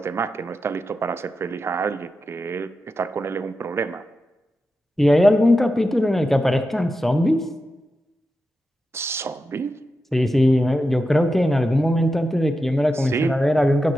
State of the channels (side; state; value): both; normal; correlation 0.90